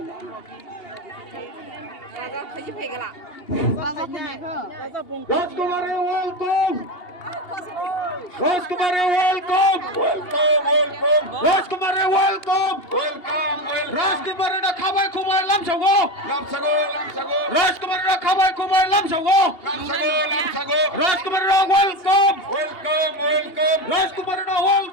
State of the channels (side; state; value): right; late; 2.8 ms